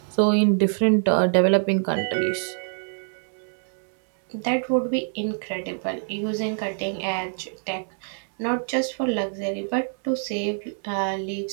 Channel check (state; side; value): silent; left; 62 dB below the other